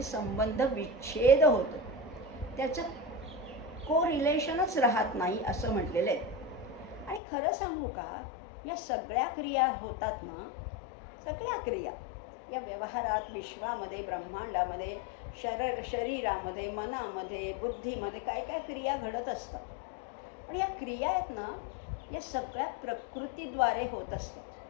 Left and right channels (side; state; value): right; drops out; at 7.2 s